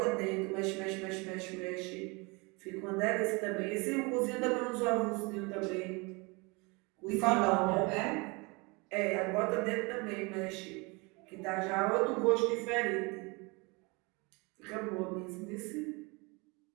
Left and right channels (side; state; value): left; quieter; 27.8 dB